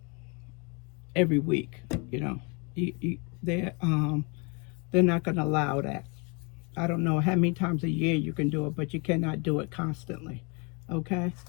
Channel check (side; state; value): right; quieter; 32.3 dB